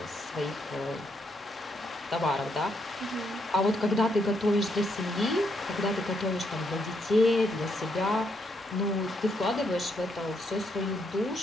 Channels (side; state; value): both; normal; correlation 0.76